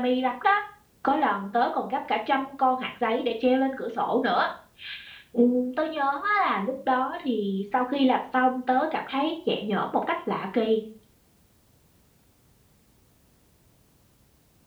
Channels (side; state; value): both; identical; correlation 1.00